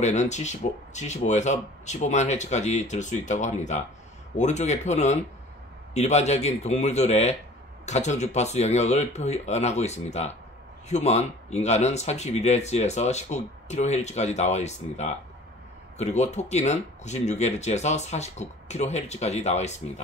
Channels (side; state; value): both; normal; correlation 0.47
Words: 75에서 15만 Hz까지 들 수 있다고 합니다. 오른쪽의 표는 일반적인 동물들의 가청주파수 영역을 표현하고 있습니다. 휴먼, 인간은 31Hz에서 19kHz까지 나와 있습니다. 그리고 토끼는 96Hz에서 49kHz까지 나와